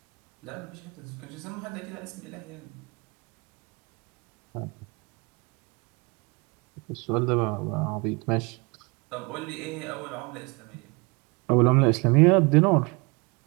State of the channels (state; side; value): quieter; left; 28.5 dB